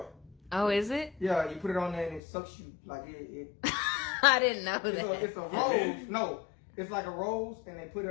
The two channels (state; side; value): drops out; right; at 2.2 s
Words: Oh, is it? Yeah, you put it on there and it sucks you like it I didn't know that. it's a rose. No, it's like a rose, and they put